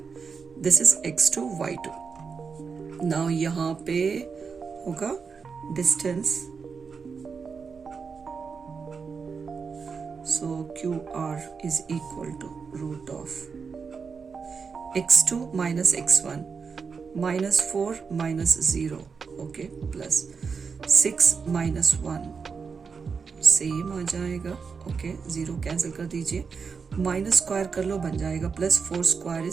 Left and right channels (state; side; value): quieter; left; 5.5 dB